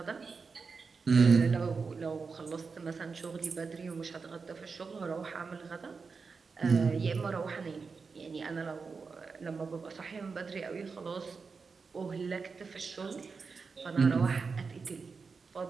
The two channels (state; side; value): quieter; left; 4.9 dB